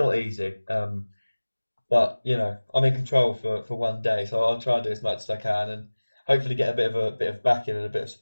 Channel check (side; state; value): both; inverted; correlation -1.00